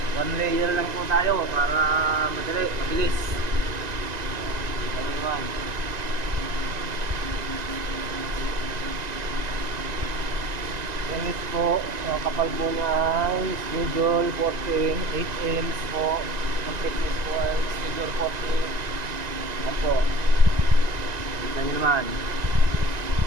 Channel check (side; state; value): left; late; 1.9 ms